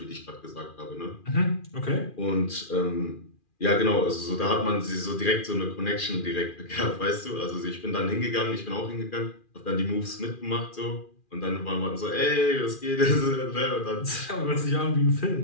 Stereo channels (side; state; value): right; late; 2.4 ms